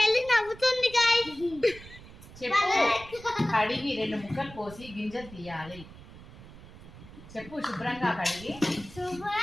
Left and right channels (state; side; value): noise; right; rumble, 17 dB below the sound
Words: నవ్వుతుంది గైస్. చెప్పు. కడిగి 2 ముక్కలు కోసి గింజలు తీయాలి. చెప్పు. శుభ్రంగా కడిగి